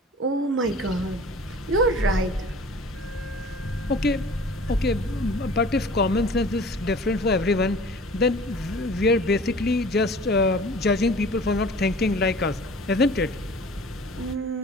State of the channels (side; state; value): both; normal; correlation 0.45